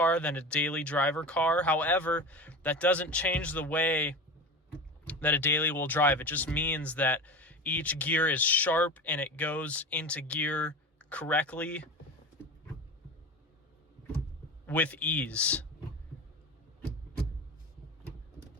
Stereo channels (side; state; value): both; normal; correlation 0.29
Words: than a daily driver car. However, that doesn't change the way that a daily will drive. It just means that each gear is sharp and it goes into gear correctly with ease.